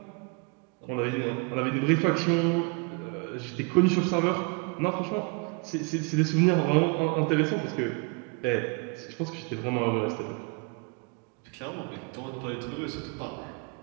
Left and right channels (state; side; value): quieter; left; 32.4 dB